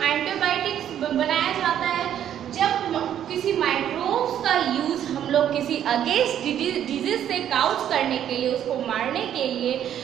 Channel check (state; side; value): quieter; left; 10.2 dB